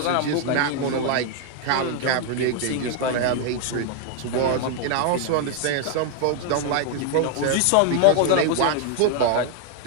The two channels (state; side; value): different; both; correlation 0.00